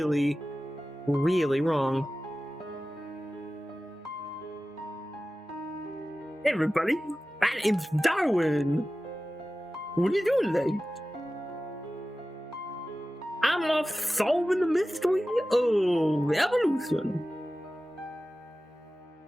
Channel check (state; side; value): normal; both; correlation 0.95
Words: really wrong. Hey everybody, my name's Darwin. What are you doing today? I'm off solving the mystery of evolution.